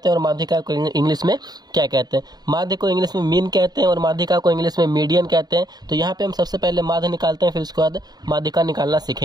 हैं और माध्यिका को इंग्लिश में क्या कहते हैं। माध्य को इंग्लिश में मीन कहते हैं और माध्यिका को इंग्लिश में मीडियन कहते हैं। तो यहाँ पे हम सबसे पहले माध्य निकालते हैं, फिर उसके बाद माध्यिका निकालना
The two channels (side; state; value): left; late; 0.20 ms